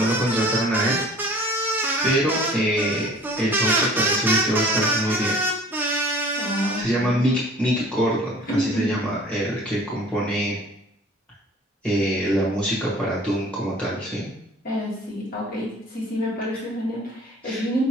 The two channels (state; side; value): normal; both; correlation 0.48